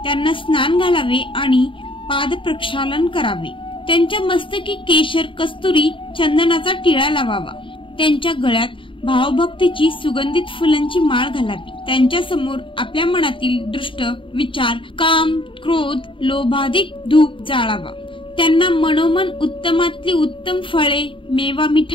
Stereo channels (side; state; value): right; late; 0.25 ms